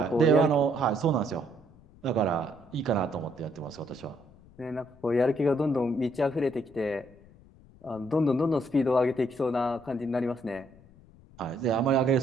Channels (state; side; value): noise; left; rumble, 25 dB below the sound